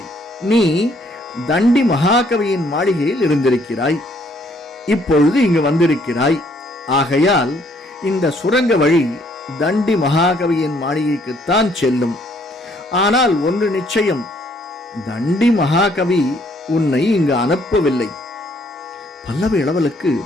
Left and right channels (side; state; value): both; normal; correlation 0.66